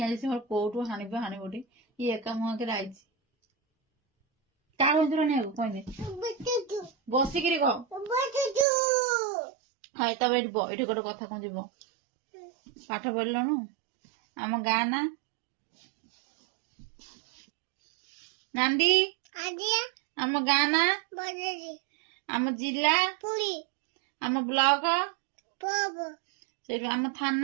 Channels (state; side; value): drops out; left; at 8.7 s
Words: आइछि मोर कोठु हानि बोटी ये एका मुह के आइछि का होंजरो नै कोइ नै बसी किरी को हाय तब एठी गोटे कथा कोन जीवो पाठ पढलनु आम गाँ ना नांदी आम गाँ ना आम जिला आम ब्लॉक आम